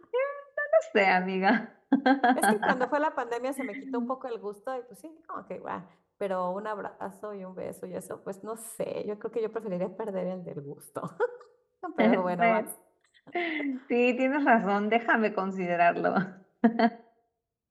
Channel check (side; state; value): both; identical; correlation 1.00